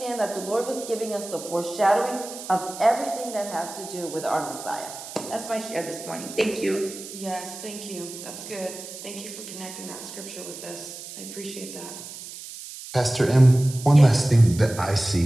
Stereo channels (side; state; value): right; noise; hiss, 12 dB below the sound